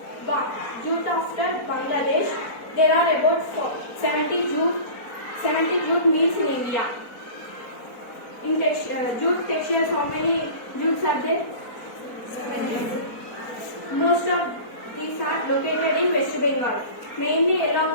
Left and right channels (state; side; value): late; right; 4.2 ms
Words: jute after Bangladesh, there are about 70 jute mills in India. In jute textiles, how many jutes are there? Most of these are located in West Bengal, mainly